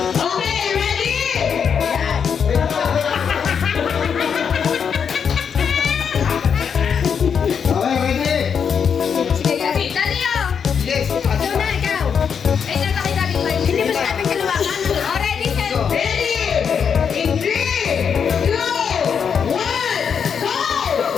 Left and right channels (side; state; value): right; quieter; 7.0 dB